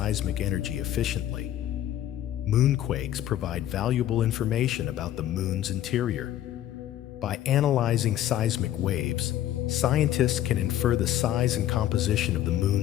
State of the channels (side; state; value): right; quieter; 12.3 dB